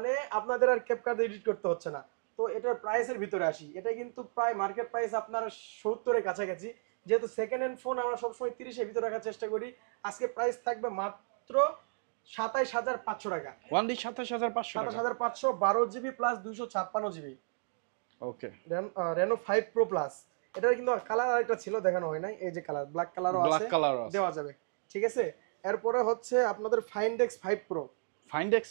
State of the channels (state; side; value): silent; left; digital silence